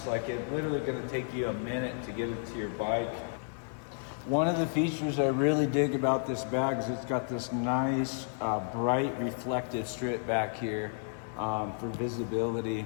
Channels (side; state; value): right; silent; digital silence